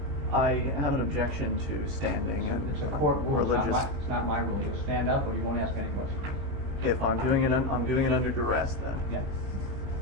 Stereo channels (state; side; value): late; left; 20 ms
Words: I have an objection to standing. It's a court rule. Religious. It's not my rule. You'll stand up or you won't ask any questions. If I'm doing it, I'm doing it under duress then. Yeah.